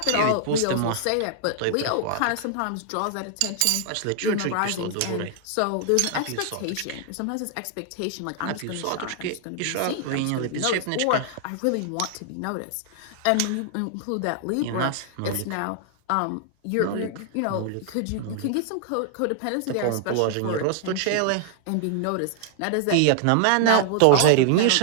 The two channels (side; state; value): both; different; correlation 0.00